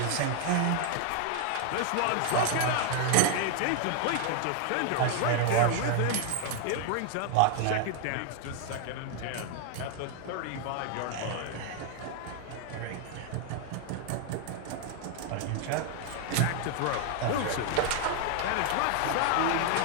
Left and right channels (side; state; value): both; different; correlation 0.00